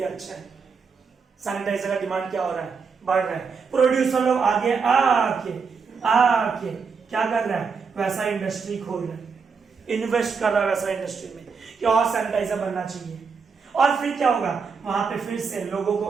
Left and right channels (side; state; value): left; quieter; 5.4 dB